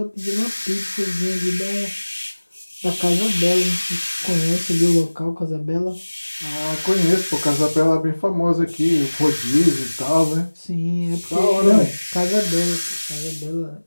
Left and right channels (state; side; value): inverted; both; correlation -1.00